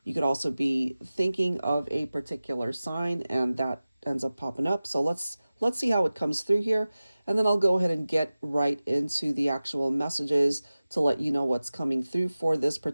You could also be thinking of a particular sign and that ends up popping up. So let's see how it comes through here. And then I'll go ahead and get right into the actual messages to let you know what's coming through for this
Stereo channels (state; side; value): inverted; both; correlation -0.96